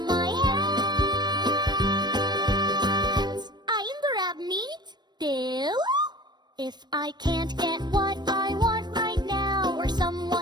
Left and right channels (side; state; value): left; late; 0.21 ms